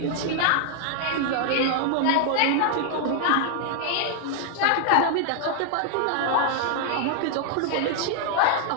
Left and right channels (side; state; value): both; different; correlation 0.00